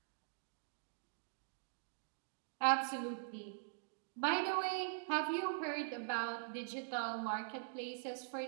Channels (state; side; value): silent; left; digital silence